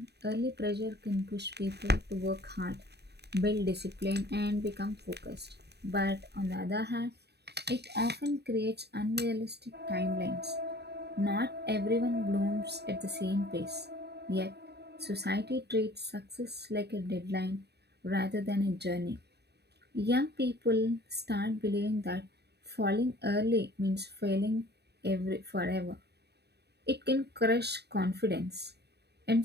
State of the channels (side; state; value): left; late; 0.48 ms